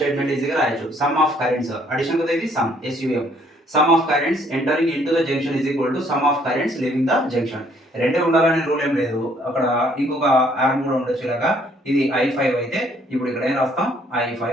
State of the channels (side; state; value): both; normal; correlation 0.64